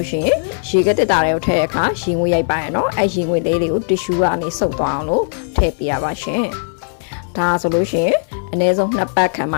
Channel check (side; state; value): right; silent; digital silence